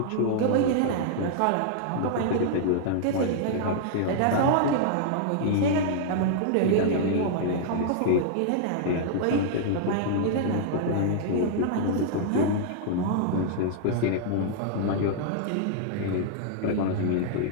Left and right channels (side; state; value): both; different; correlation -0.01